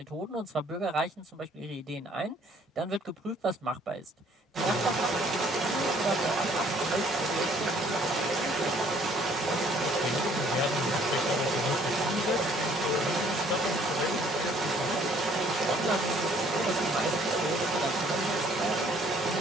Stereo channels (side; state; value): both; normal; correlation 0.60